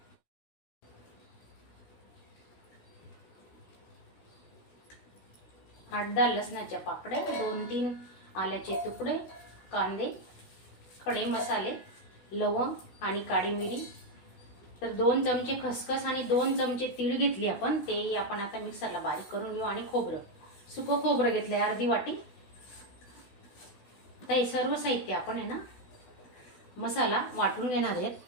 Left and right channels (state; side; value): late; right; 16 ms